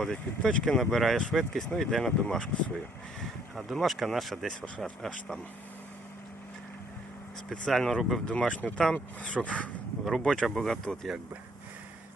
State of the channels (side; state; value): both; normal; correlation 0.64